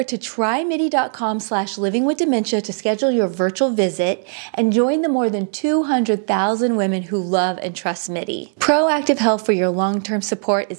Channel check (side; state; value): left; silent; 59 dB below the other